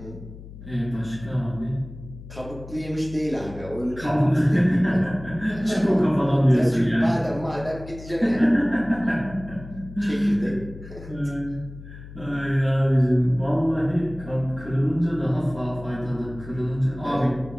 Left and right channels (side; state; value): left; noise; hum, 15 dB below the sound